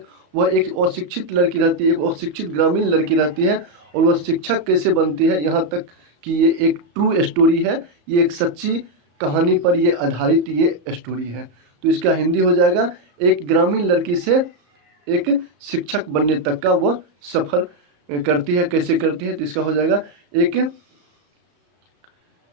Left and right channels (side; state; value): left; late; 34 ms